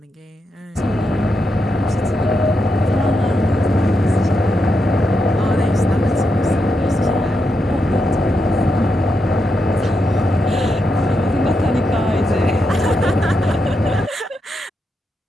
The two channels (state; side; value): normal; both; correlation 0.84